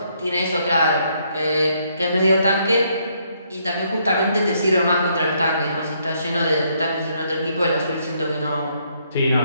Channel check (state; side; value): inverted; both; correlation -0.72